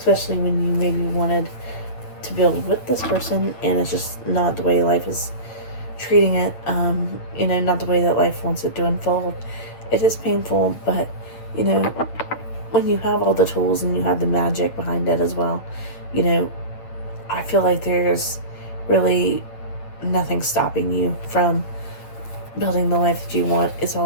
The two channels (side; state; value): right; late; 8.9 ms